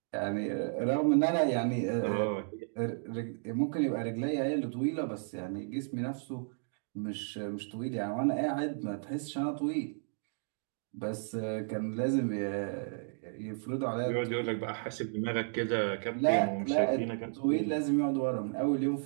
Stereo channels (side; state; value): left; silent; digital silence